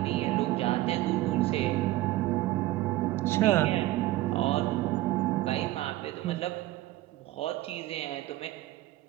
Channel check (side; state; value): left; quieter; 16.7 dB